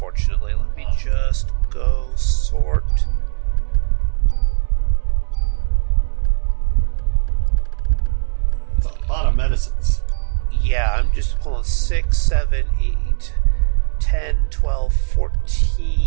Let me just go sort. That's a lot of medicines. Yeah, I'm just pulling 6, 7, 8, 10, 12,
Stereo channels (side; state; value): left; silent; 66 dB below the other